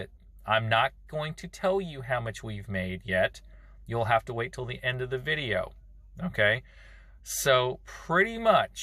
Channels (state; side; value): identical; both; correlation 1.00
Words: I'm not going to tell you how much we've made yet. You'll have to wait till the end of the video. Okay? So pretty